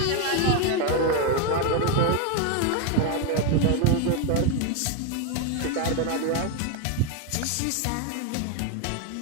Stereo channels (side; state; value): both; different; correlation 0.02